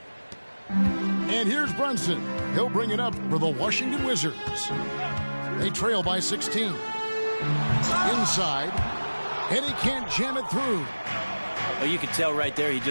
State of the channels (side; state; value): both; inverted; correlation -1.00